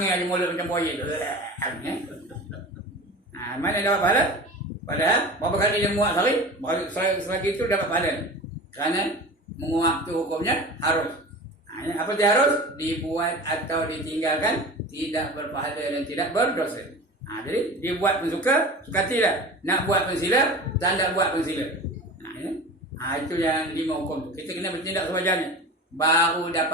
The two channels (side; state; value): both; normal; correlation 0.34